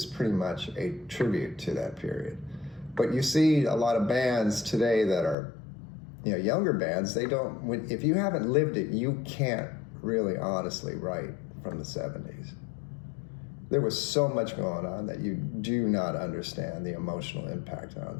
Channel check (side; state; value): right; drops out; at 5.4 s